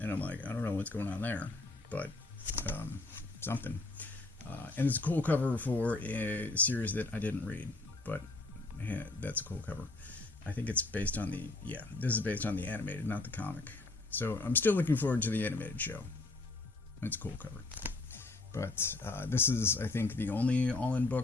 I'm like, I don't know what's going on there, but something. And it's a cool cover for a series that I didn't read, but yeah, that's a cool cover. I think it's based on this is based on the animated, not the comic. So I'm still looking forward to the animated show. It's a cool cover. But this is, I think, the only all-in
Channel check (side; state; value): right; quieter; 3.1 dB